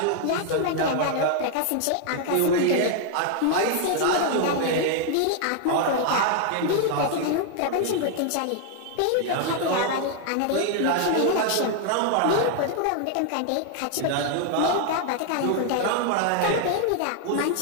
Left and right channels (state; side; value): different; both; correlation 0.00